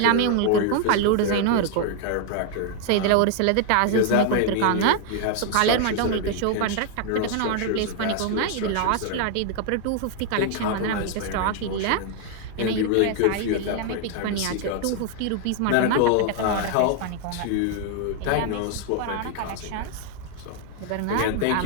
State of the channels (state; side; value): different; both; correlation 0.00